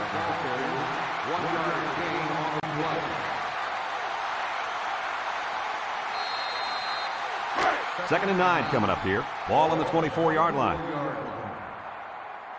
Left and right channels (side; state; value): both; identical; correlation 1.00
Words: Second and 9 coming up here. Ball on the 24-yard line.